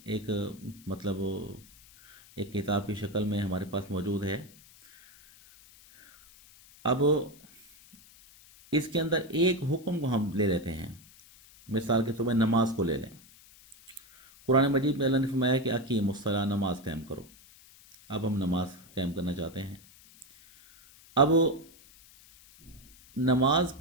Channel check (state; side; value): noise; left; hiss, 24 dB below the sound